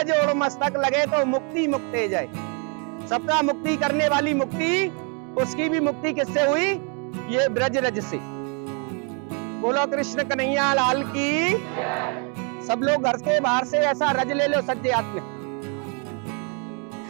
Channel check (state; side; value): quieter; left; 37.1 dB